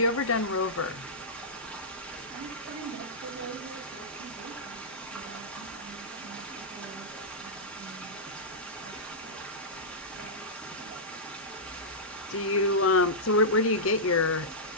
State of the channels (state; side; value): normal; both; correlation -0.13